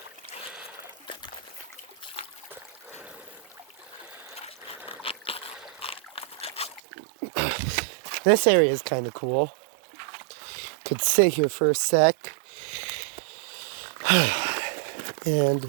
This area is kind of cool. Could sit here for a sec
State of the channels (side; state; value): left; drops out; at 6.8 s